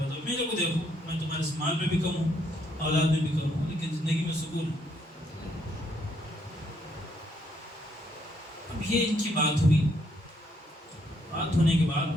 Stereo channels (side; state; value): both; normal; correlation 0.71